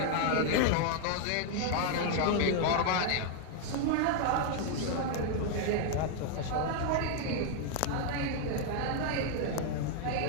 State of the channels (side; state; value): both; different; correlation 0.00